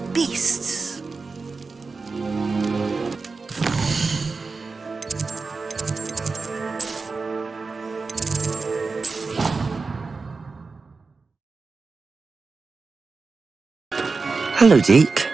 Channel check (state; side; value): quieter; left; 4.3 dB